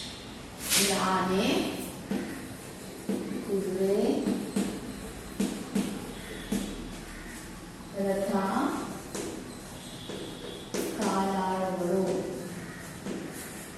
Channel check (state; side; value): identical; both; correlation 1.00